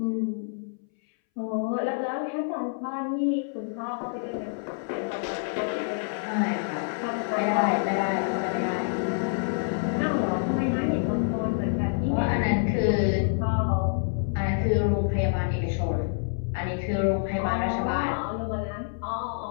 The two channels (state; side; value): silent; right; 60 dB below the other